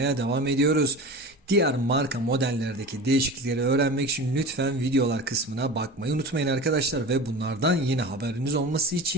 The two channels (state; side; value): normal; both; correlation 0.33